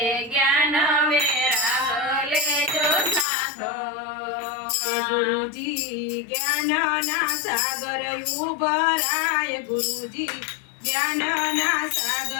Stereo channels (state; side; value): drops out; right; at 3.2 s